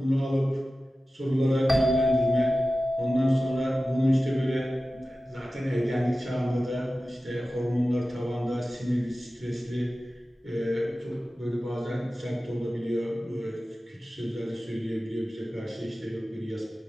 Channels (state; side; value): normal; both; correlation 0.95